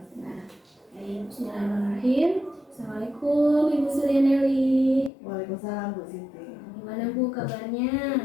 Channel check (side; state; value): right; drops out; at 5.1 s